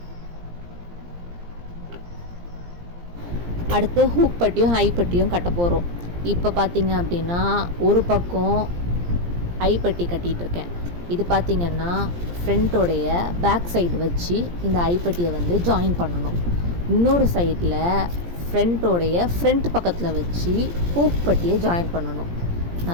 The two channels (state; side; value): late; left; 17 ms